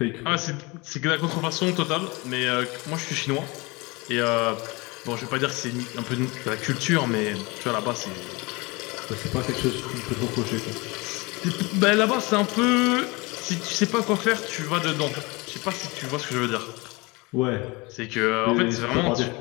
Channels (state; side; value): quieter; right; 25.5 dB